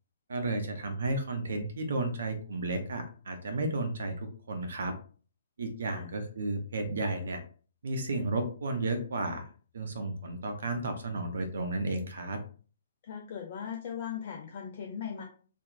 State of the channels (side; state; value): both; inverted; correlation -0.64